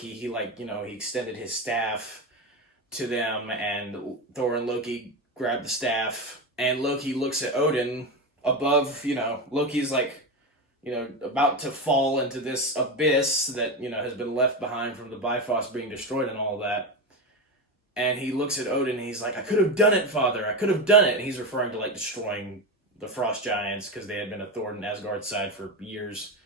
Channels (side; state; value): both; normal; correlation 0.17